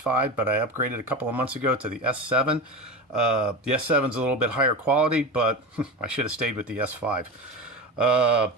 but I upgraded a couple of months ago to the S7. The S7 is a little bit higher quality, but I should have stayed with the S5.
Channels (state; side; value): normal; both; correlation 0.24